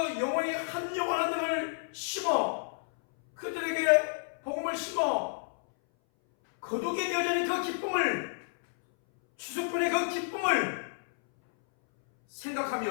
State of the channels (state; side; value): silent; right; 58 dB below the other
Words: 한 영혼 한 명을 심어 그들에게 복음을 심어 거두게 되어지는 그 기쁨을, 추수꾼의 그 기쁨을